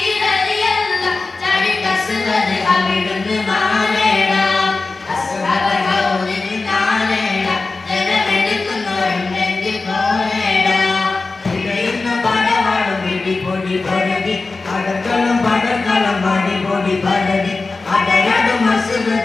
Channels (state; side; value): quieter; right; 3.7 dB